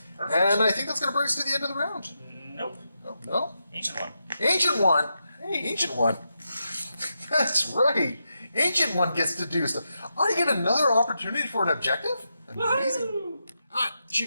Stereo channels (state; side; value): inverted; both; correlation -0.86